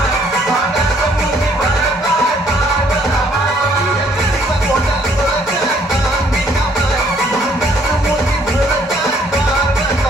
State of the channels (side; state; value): both; normal; correlation 0.64